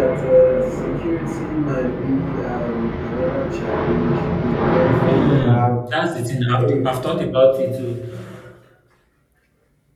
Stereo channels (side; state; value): both; identical; correlation 1.00